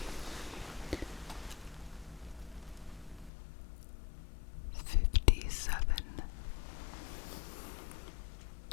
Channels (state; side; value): drops out; right; at 3.3 s